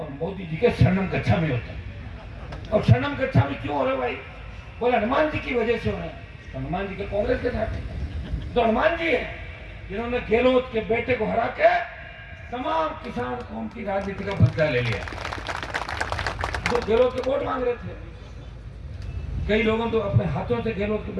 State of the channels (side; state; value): both; identical; correlation 1.00